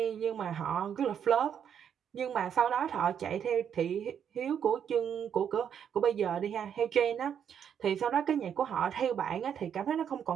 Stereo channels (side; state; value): left; quieter; 8.4 dB